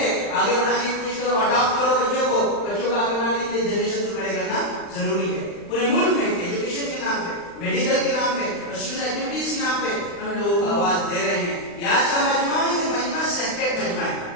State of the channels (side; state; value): right; late; 35 ms